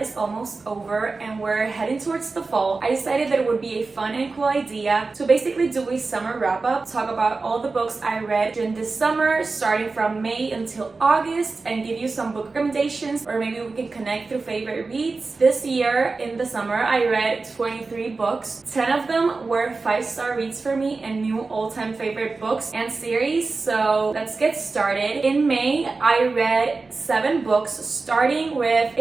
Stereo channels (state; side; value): quieter; left; 3.9 dB